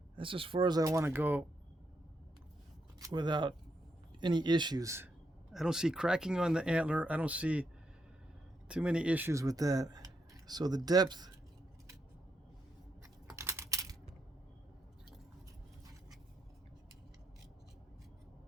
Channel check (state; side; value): normal; both; correlation 0.81